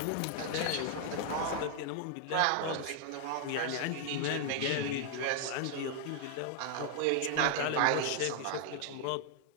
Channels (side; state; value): both; different; correlation 0.00